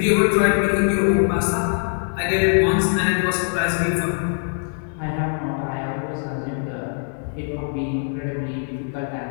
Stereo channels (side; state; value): right; silent; digital silence